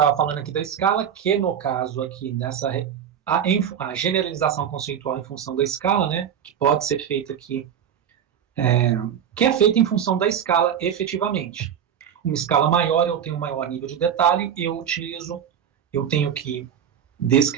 falando aqui da escala, que no caso aqui, a generalização conceitual em função da escala, né, que pode ser feita aqui, que é feita em função da escala efetivamente. Uma escala maior, eu tenho um maior nível de detalhe, eu tenho que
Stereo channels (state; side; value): quieter; left; 8.8 dB